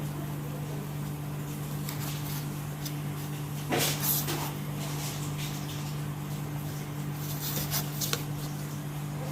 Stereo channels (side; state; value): both; identical; correlation 1.00